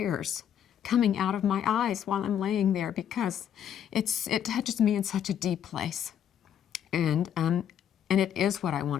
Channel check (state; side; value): quieter; right; 9.4 dB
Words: coming out of my eyes while I'm laying there because it touches me in such a deep place. And it is what I